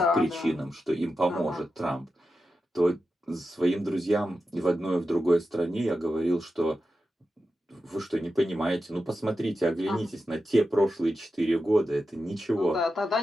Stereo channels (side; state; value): both; normal; correlation 0.90